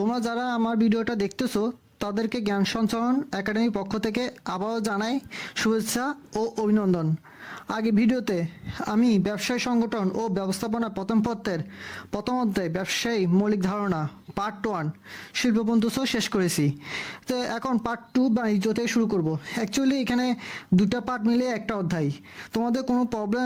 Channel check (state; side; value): identical; both; correlation 1.00